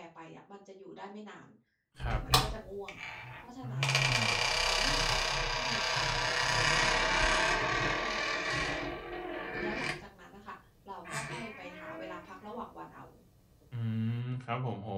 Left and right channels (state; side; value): identical; both; correlation 1.00